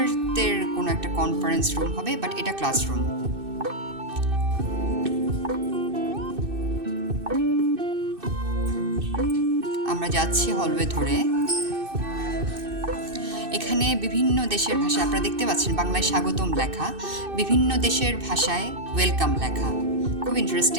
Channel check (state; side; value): late; left; 2.6 ms